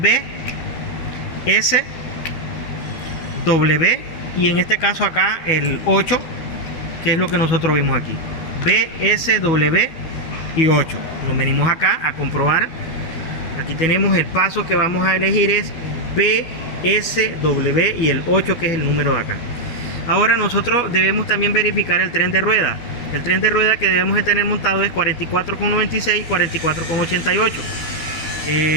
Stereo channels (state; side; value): late; right; 12 ms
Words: S, W, y en este caso acá el 8, que es lo que nosotros vimos aquí, B, S, W y 8. Nos venimos acá a comprobar. Aquí tenemos el paso que vamos a elegir, es B, S, W y el 8, que es el número de acá. Ahora nosotros debemos también verificar el tren de rueda. El tren de rueda que debemos de tener montado es 44,96 y 44,88.